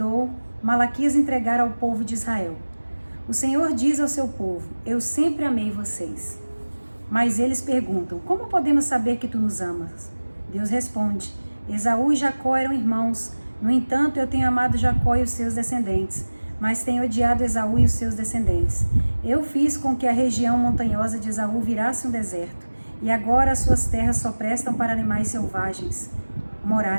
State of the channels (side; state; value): both; inverted; correlation -1.00